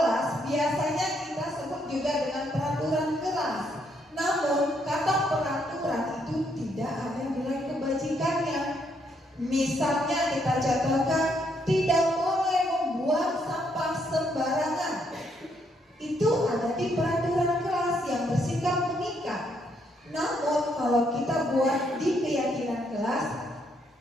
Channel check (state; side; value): normal; both; correlation 0.73